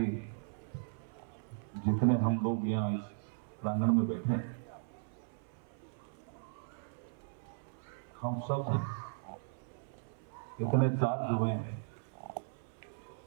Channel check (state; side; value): silent; left; 53 dB below the other